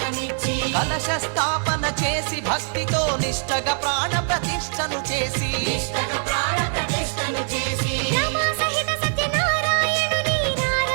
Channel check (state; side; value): silent; left; digital silence